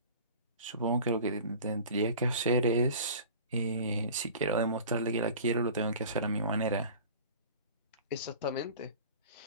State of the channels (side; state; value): both; inverted; correlation -0.41